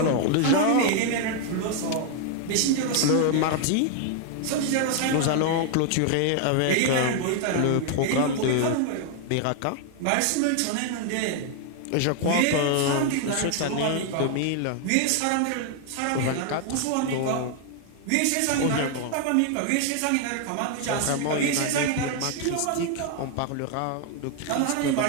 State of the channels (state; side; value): different; both; correlation 0.00